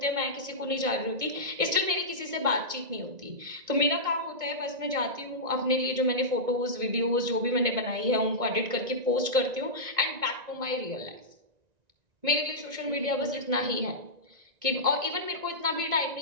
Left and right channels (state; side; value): late; left; 1.6 ms